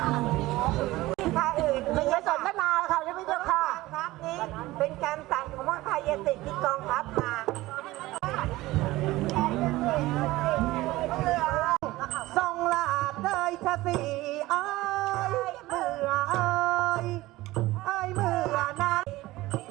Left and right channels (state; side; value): quieter; left; 18.3 dB